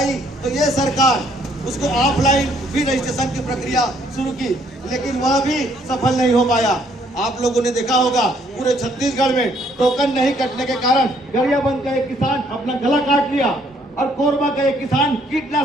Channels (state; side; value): normal; both; correlation 0.66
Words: तो ये सरकार उसको ऑफलाइन भी रजिस्ट्रेशन की प्रक्रिया शुरू की, लेकिन वह भी सफल नहीं हो पाया। आप लोगों ने देखा होगा पूरे छत्तीसगढ़ में टोकन नहीं कटने के कारण गरियाबंद का एक किसान अपना गला काट लिया और कोरबा का एक किसान